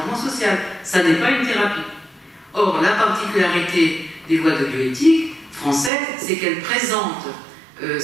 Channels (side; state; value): left; drops out; at 5.9 s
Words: social, ça n'est pas une thérapie. Or, la particularité des lois de bioéthique françaises, c'est qu'elles présentent